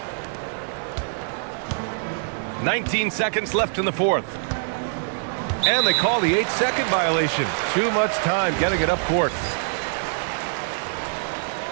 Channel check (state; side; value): silent; left; digital silence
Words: 19 seconds left in the fourth. And they call the 8-second violation. Too much time getting it up court.